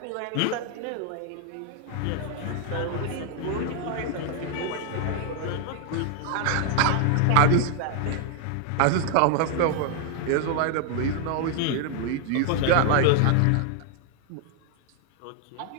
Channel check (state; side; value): different; both; correlation 0.00